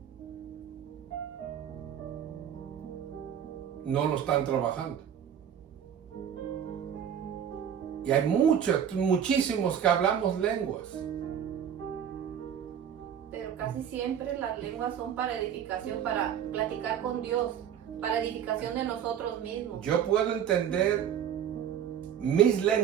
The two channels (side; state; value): left; quieter; 9.0 dB